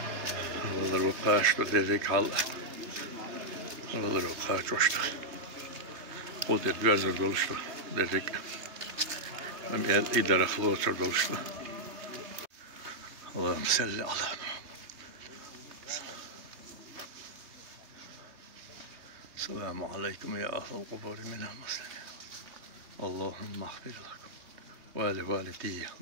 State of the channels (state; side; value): late; left; 3.3 ms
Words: والله الوقاش تدريك على والله الوقاش وشت قلت الجزر دولشت دريك من إدارة خلوص دولشت. اللهم صل على محمد. السلام عليكم يا أهل القبور من المسلمين. اللهم اغفر لكم ولوالدي.